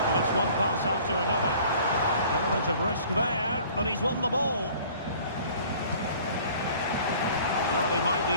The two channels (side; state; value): both; inverted; correlation -0.51